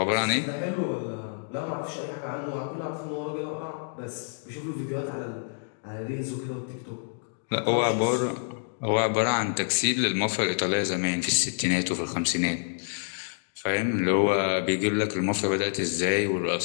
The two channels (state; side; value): silent; right; digital silence